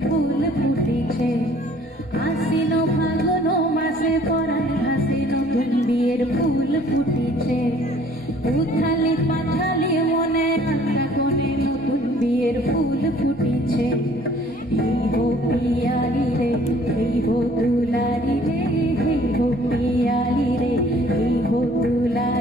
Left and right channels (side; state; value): both; normal; correlation 0.56